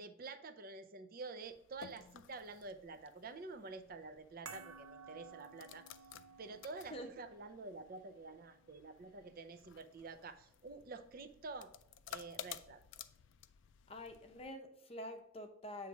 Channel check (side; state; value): both; normal; correlation -0.06